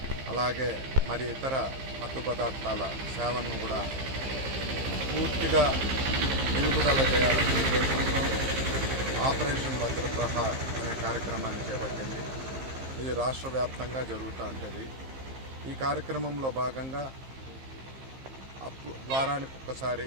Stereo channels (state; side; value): late; left; 15 ms